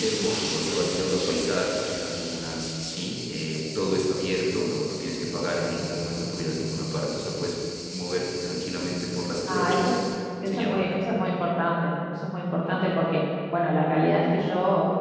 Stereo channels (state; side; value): identical; both; correlation 1.00